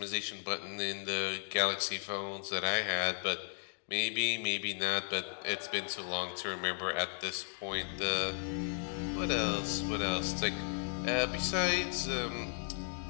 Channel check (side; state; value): right; silent; 54 dB below the other